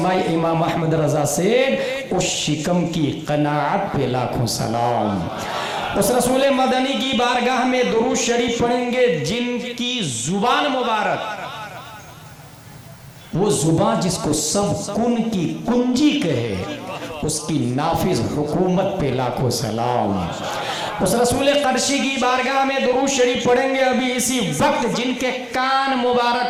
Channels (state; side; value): identical; both; correlation 1.00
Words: इमाम अहमद रज़ा सेड, उस शिकम की कनाअत पे लाखों सलाम। उस रसूल मदनी की बारगाह में दुरूद शरीफ पढ़ेंगे जिनकी जुबान मुबारक, वो जुबान जिसको सब कुन की कुंजी कहे, उसकी नाफिज हुकूमत पे लाखों सलाम। उस रसूल क़रशी की बारगाह में दुरूद शरीफ पढ़ेंगे अभी इसी वक्त जिनके कान